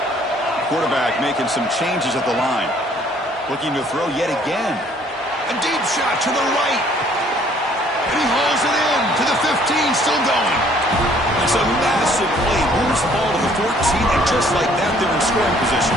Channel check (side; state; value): both; normal; correlation 0.60